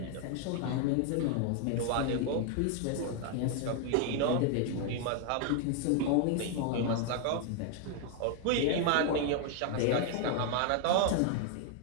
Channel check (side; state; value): both; different; correlation 0.00